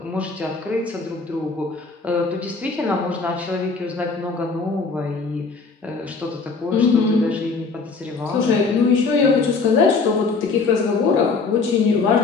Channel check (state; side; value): quieter; right; 4.4 dB